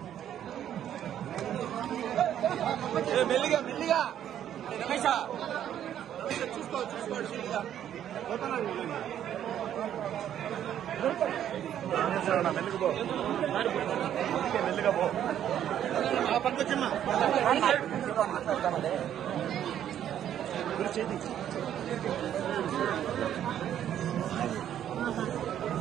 మెల్లిగా మెల్లిగా రమేష చూసుకోండి మెల్లిగా పో పట్టుకొచ్చమ్మా.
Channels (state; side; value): quieter; left; 10.5 dB